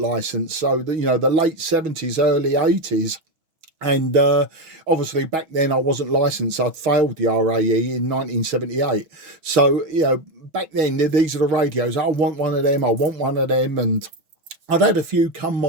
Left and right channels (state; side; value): late; left; 6.2 ms